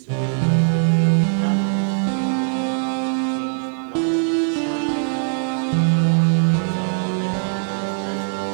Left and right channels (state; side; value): silent; left; digital silence